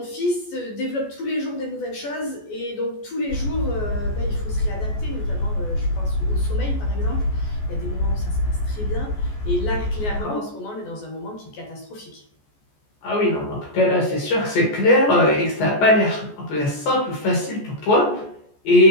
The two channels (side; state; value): right; late; 14 ms